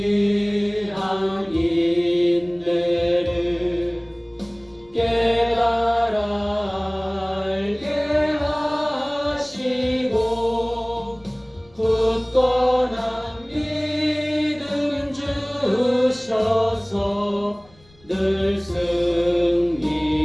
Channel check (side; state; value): left; noise; rumble, 29 dB below the sound